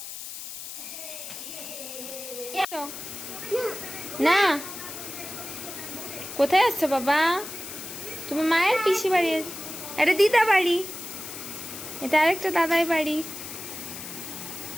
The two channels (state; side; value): noise; left; hiss, 10 dB below the sound